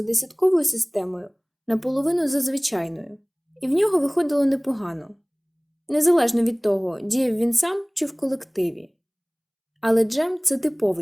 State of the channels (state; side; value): identical; both; correlation 1.00